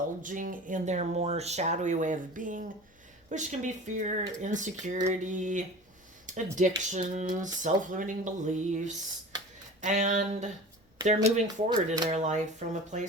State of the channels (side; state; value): both; normal; correlation 0.37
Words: in their more shadowy way of being, which can be fear, insecurity, addictions, self limiting beliefs. And they're moving forward in their life from a